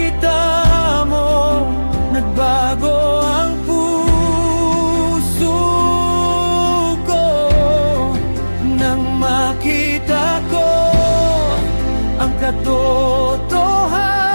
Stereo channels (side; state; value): both; inverted; correlation -1.00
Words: mo, nagbago ang puso ko. Nang makita ko ang